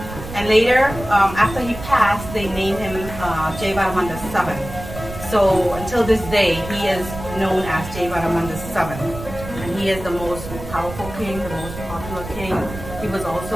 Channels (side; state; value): right; noise; rumble, 11 dB below the sound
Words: And later, after he passed, they named him Suryavarman II. So until this day, he is known as Suryavarman II. And he is the most powerful king, the most popular king. He was